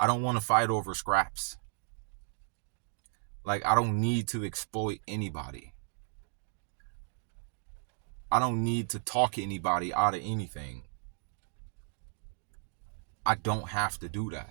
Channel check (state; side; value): silent; left; 55 dB below the other